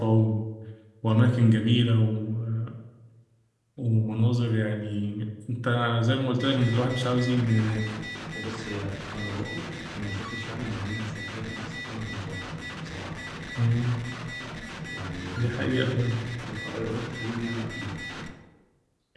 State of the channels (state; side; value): identical; both; correlation 1.00